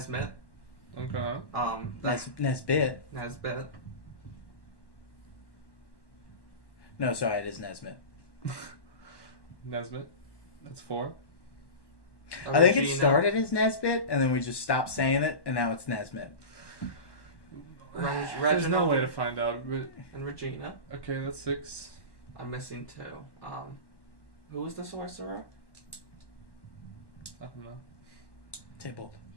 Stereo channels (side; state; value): right; late; 1.1 ms